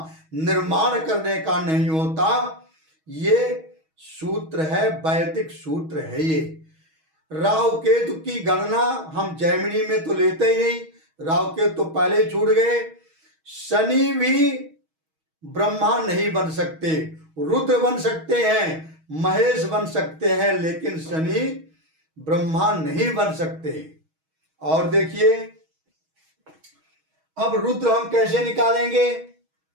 निर्माण करने का नहीं होता। ये सूत्र है, वैदिक सूत्र है ये। राहु केतु की गणना हम जैमिनी में तो लेते ही नहीं, राहु केतु तो पहले ही छूट गए। शनि भी ब्रह्मा नहीं बन सकते, रुद्र बन सकते हैं, महेश बन सकते हैं, लेकिन शनि ब्रह्मा नहीं बन सकते। और देखिए अब रुद्र हम कैसे निकालेंगे।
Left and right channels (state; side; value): late; left; 6.3 ms